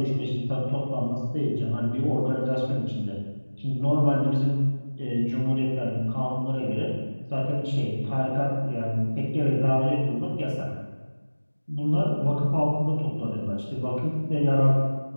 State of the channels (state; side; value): inverted; both; correlation -1.00